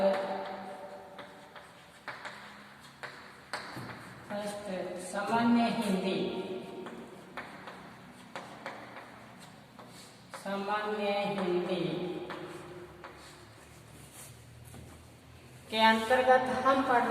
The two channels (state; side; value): identical; both; correlation 1.00